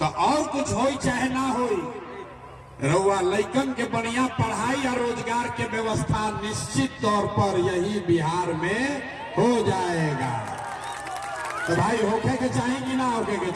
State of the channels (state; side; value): identical; both; correlation 1.00